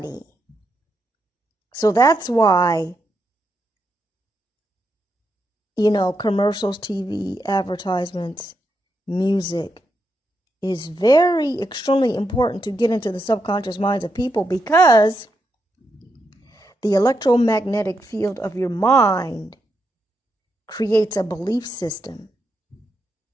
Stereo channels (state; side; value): normal; both; correlation 0.83